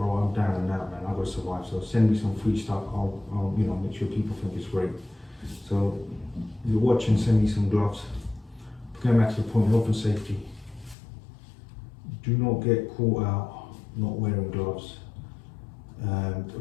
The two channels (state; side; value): drops out; right; at 11.0 s